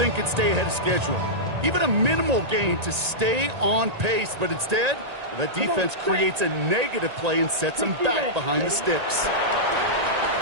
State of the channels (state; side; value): late; left; 1.8 ms